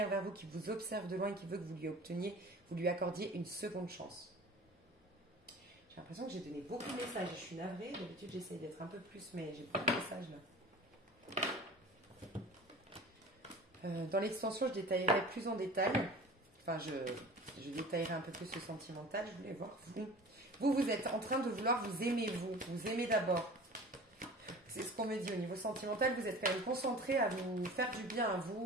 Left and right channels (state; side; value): normal; both; correlation 0.40